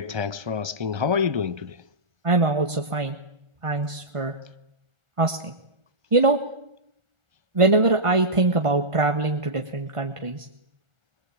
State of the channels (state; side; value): late; left; 1.5 ms